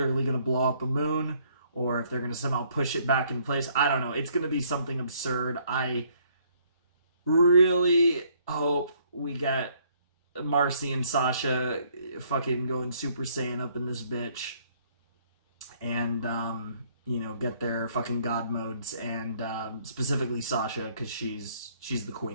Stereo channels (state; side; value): inverted; both; correlation -0.65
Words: going to blow up a moon, or if they're going to somehow push it back in place. I don't know. It's going to be something absurd. I really hope we get Marcy and Sasha fucking going Super Saiyan up in this bitch. And, you know, get their fucking god modes. And specifically Sasha, because she's the